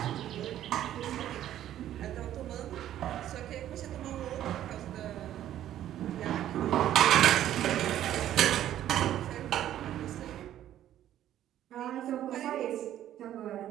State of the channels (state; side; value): quieter; left; 12.0 dB